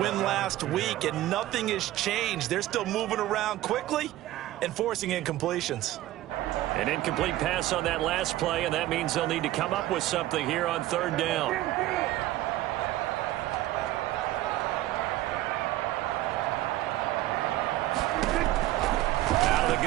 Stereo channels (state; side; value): quieter; left; 15.4 dB